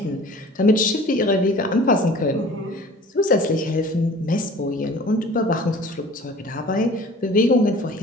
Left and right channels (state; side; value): normal; both; correlation 0.45